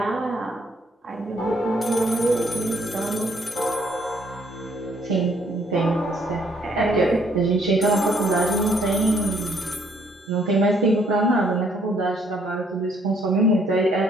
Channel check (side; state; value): both; normal; correlation 0.67